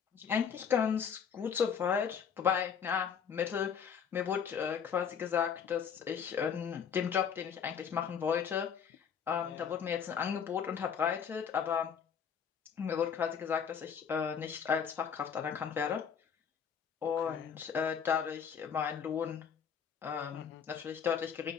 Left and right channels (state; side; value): quieter; right; 7.3 dB